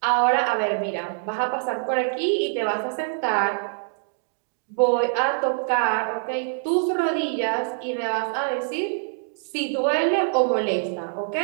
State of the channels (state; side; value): silent; left; digital silence